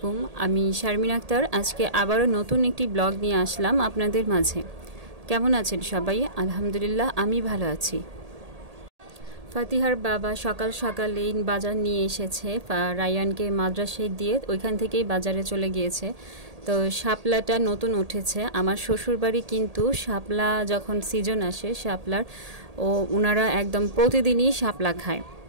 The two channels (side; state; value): left; late; 1.8 ms